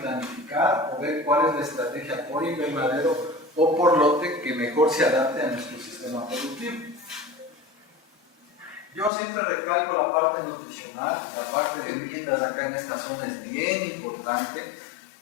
o ver cuál es la estrategia por invernadero o por lote que mejor se adapte a nuestro sistema productivo. Yo siempre recalco la parte nutricional, la parte de viviendas acá en esta zona es bien importante,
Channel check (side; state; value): right; drops out; at 9.1 s